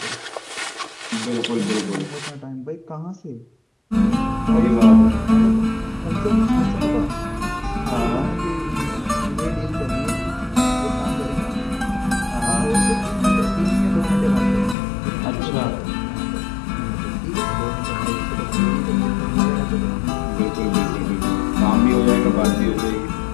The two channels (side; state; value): right; drops out; at 14.8 s